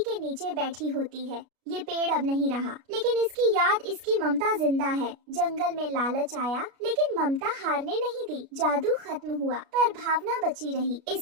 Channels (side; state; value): left; late; 33 ms